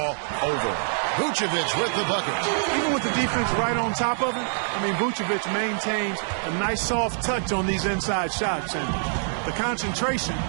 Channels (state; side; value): silent; left; digital silence